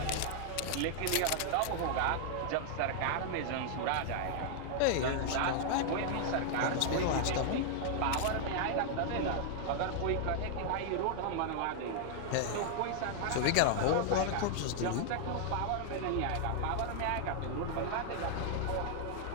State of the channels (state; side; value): different; both; correlation -0.01